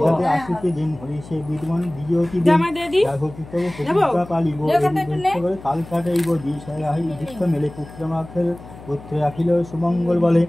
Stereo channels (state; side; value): noise; left; hum, 17 dB below the sound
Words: পুত্র রাখিল সুমঙ্গল বলে